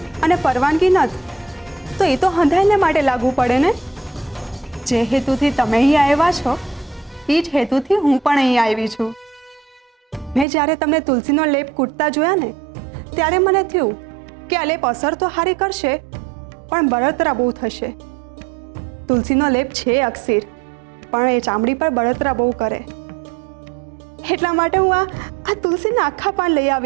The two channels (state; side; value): drops out; left; at 10.5 s